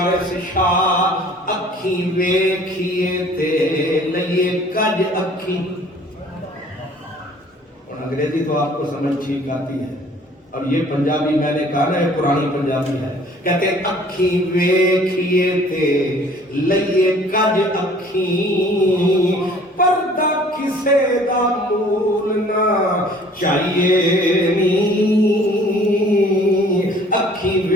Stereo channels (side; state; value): both; normal; correlation 0.53